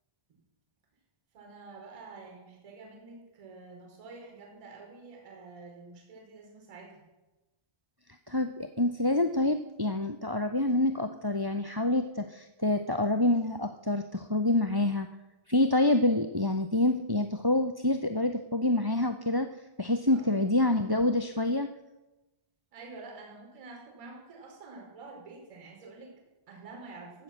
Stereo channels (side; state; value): left; late; 1.1 ms